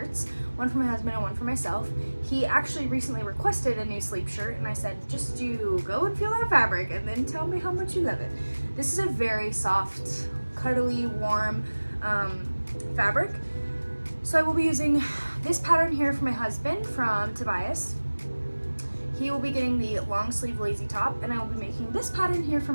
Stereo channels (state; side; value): inverted; both; correlation -1.00